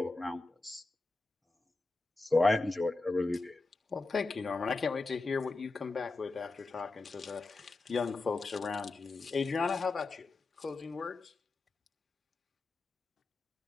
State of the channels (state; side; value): quieter; right; 3.4 dB